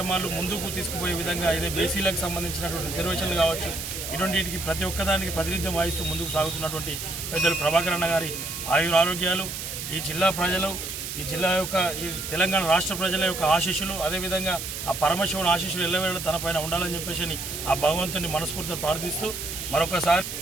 ముందుకు తీసుకుపోయే విధంగా ఇదే బీసీలకు సంబంధించినటువంటి రిజర్వేషన్లు కావచ్చు, ఇటువంటి వీటికి ప్రతి ఒక్కదానికి ప్రాతినిధ్యం వహిస్తూ ముందుకు సాగుతున్నటువంటి పెద్దలు ప్రభాకర్ అన్న గారి ఆయురారోగ్యాలు, ఈ జిల్లా ప్రజలు, ఈ జిల్లా యొక్క ఈ తెలంగాణ రాష్ట్ర ప్రజల యొక్క ఆశీస్సులు, అదేవిధంగా ఆ పరమశివుని ఆశీస్సులు ఎల్లవేళ తన పైన ఉండాలని చెప్పేసి ఆ భగవంతుని మనస్ఫూర్తిగా ప్రార్థిస్తూ మరొకసారి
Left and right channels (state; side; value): noise; right; hiss, 6 dB below the sound